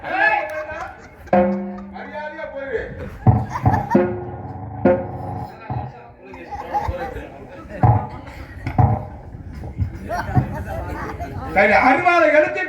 மரியாதையா போயிரு. அறுவாத எடுத்து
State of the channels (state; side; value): identical; both; correlation 1.00